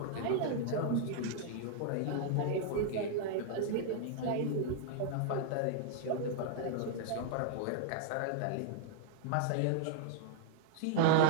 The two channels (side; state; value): both; different; correlation -0.01